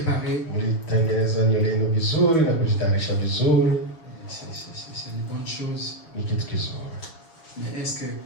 Mlitengeneza nywele yenu vizuri na kujitayarisha vizuri. C'est une bonne chose. Ni kitu kizuri. Mais est-ce que,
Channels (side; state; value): right; late; 6.8 ms